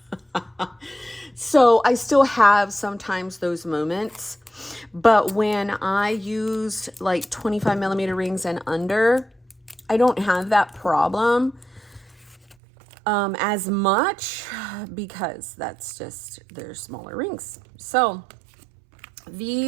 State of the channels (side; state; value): left; drops out; at 12.6 s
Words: So I still have sometimes those moments. But when I used like 25 millimeter rings and under, I don't have that problem as much because that's just, they're smaller rings. So